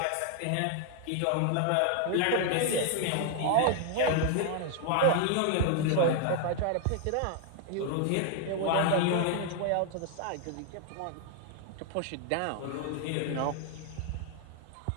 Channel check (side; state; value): both; different; correlation 0.00